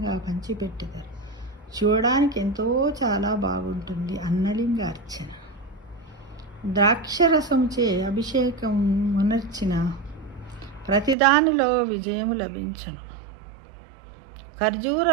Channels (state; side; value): drops out; left; at 11.2 s